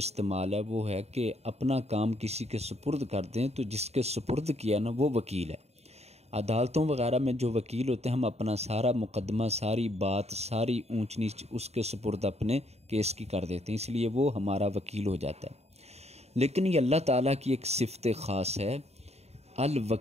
ہے وہ ہے کہ اپنا کام کسی کے سپرد کر دیں، تو جس کے سپرد کیا نا وہ وکیل ہے۔ عدالتوں وغیرہ میں جو وکیل ہوتے ہیں، ہم اپنا سارا مقدمہ، ساری بات، ساری اونچ نیچ اس کے سپرد اپنے کیس کی کر دیتے ہیں، اس لیے وہ ہمارا وکیل ہو جاتا ہے۔ لیکن یہ اللہ تعالیٰ کی ایک صفت خاص ہے،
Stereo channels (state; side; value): late; left; 0.31 ms